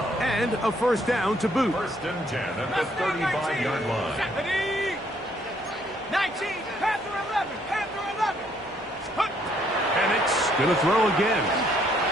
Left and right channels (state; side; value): normal; both; correlation 0.68